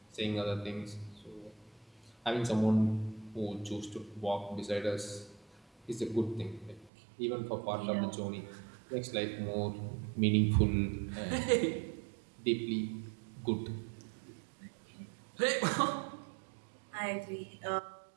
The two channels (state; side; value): drops out; left; at 6.9 s